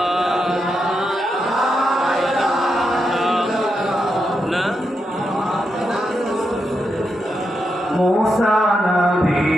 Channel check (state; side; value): normal; both; correlation 0.85